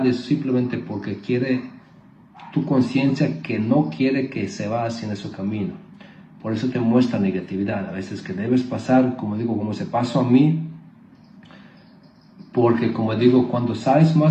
es simplemente porque quiere tu conciencia que no quiere que se vaya hacia ese camino. Por eso te muestra negatividad, a veces que debes pasar, como digo, como se pasó a mí, porque como digo, cuando sabes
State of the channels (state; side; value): identical; both; correlation 1.00